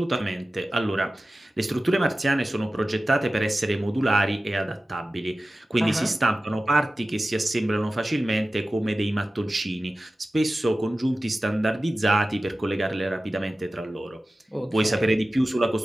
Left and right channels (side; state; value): both; normal; correlation 0.95